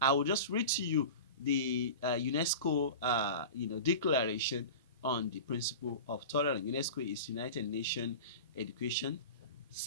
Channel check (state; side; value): inverted; both; correlation -0.32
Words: I will just read to you the UNESCO declaration on the principle of tolerance. UNESCO is United Nations Education,